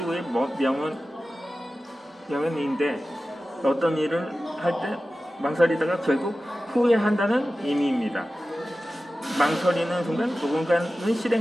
명언인데 어떤 일을 할 때 망설이다가 결국 후회한다는 의미입니다. 망설이는 순간 누군가는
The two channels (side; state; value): both; normal; correlation 0.95